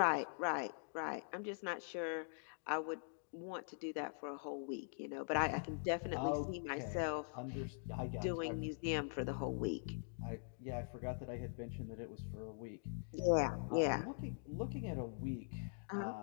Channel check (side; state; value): right; silent; digital silence